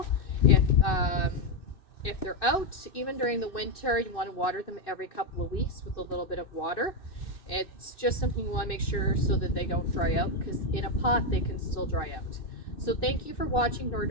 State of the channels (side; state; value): right; late; 2.6 ms